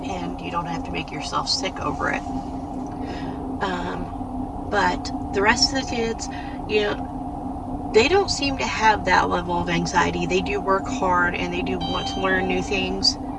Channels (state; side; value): identical; both; correlation 1.00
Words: and you don't have to make yourself sick over it. But the rest of the kids, you know, they don't seem to have that level of anxiety. They do work hard and they do want to learn new things,